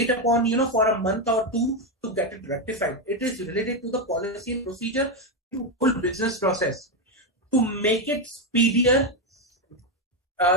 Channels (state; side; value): normal; both; correlation 0.07